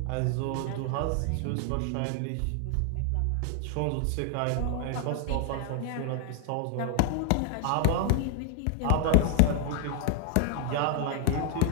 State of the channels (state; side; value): different; both; correlation 0.00